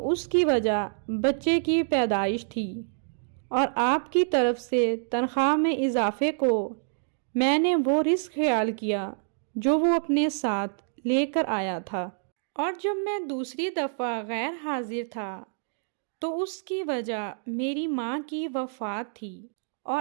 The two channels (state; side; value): silent; left; digital silence